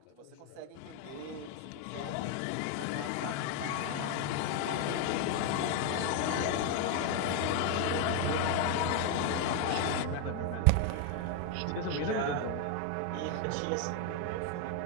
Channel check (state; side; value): different; both; correlation 0.01